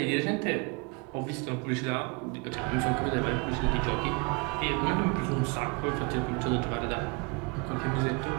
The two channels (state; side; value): quieter; left; 30.1 dB